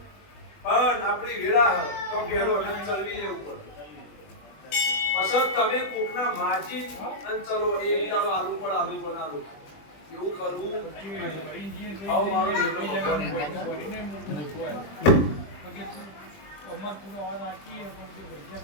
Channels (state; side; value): late; right; 20 ms